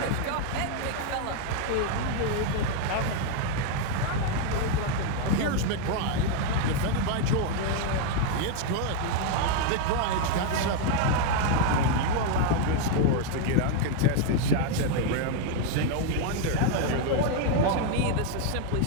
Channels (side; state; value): both; different; correlation 0.01